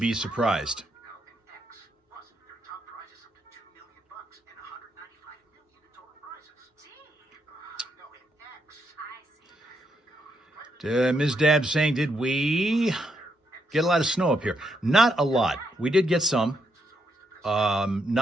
surprised. Ms. Dab saying, did we get a lot of snow up here? Not a lot. We did get some.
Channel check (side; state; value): both; normal; correlation 0.78